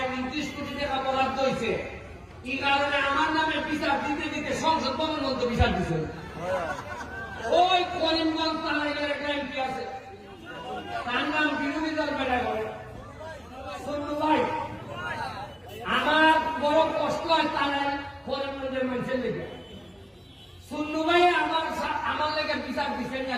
29 কোটি টাকা বরাদ্দ হয়েছে, এই কারণে আমার নামে বিচার দিতে দিতে সংসদ ভবন মধ্যে বিচার দিচ্ছে। ওই করিমগঞ্জ তালাইয়ের একটা এমপি আছে, তার নাম বিরোধী দল বেড়া করে সন্নু ভাই। আমার বড় কষ্ট হয় তারাই করিমগঞ্জের মানুষের লেগে, সন্নু ভাই আমার লেগে বিচার দিচ্ছেন না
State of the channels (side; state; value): both; identical; correlation 1.00